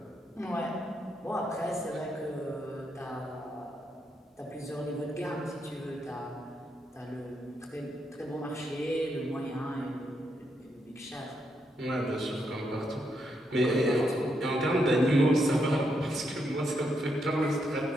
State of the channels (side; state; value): both; normal; correlation 0.80